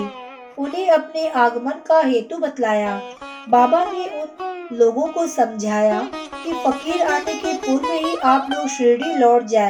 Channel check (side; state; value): both; identical; correlation 1.00